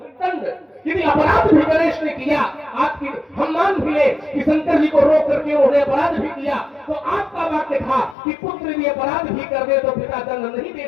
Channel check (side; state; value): right; drops out; at 8.2 s